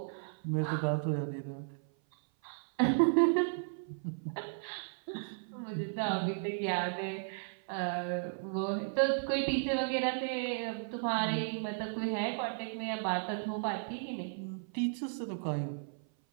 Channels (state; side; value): silent; left; 55 dB below the other